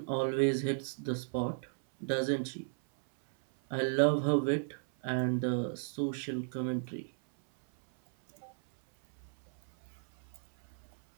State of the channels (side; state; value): left; silent; 55 dB below the other